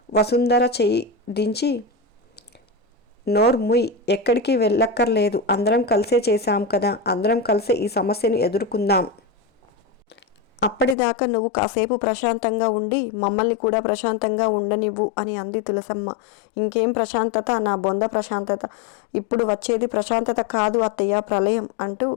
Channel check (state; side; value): drops out; right; at 11.0 s